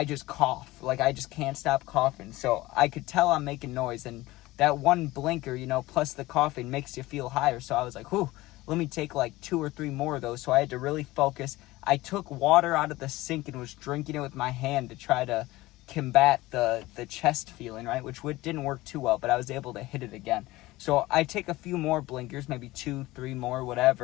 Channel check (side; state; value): right; quieter; 18.8 dB